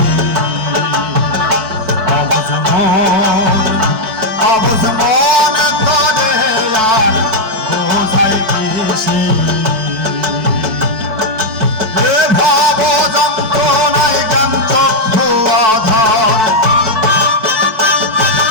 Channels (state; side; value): late; left; 4.5 ms